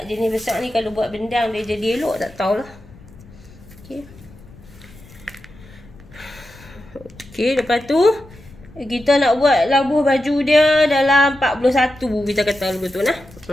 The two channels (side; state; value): left; noise; rumble, 22 dB below the sound